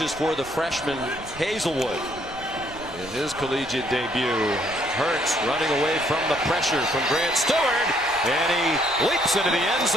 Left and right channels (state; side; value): noise; right; rumble, 20 dB below the sound